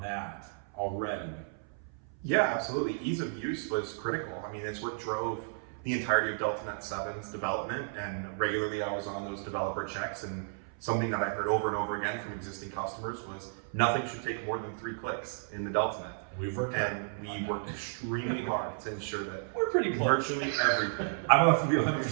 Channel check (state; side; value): silent; left; 56 dB below the other